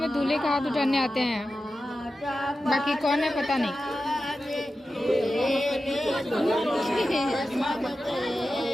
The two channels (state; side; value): normal; both; correlation 0.93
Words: दूल्हे का हाथ उठाने आते हैं, बाकी कौन है पता नहीं।